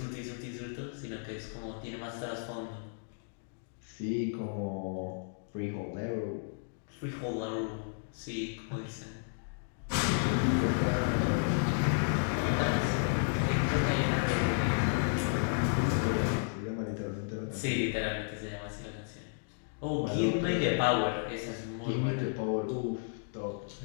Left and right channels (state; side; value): silent; right; digital silence